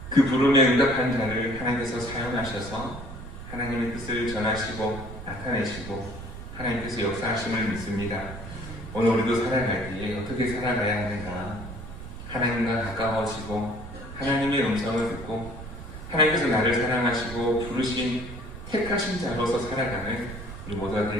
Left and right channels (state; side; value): noise; right; rumble, 11 dB below the sound